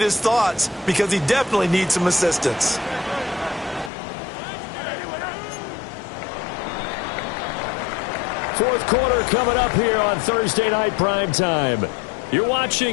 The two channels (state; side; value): drops out; right; at 3.9 s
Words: his thoughts because he definitely needs some assistance. Fourth quarter coming up here on Thursday Night Primetime. You're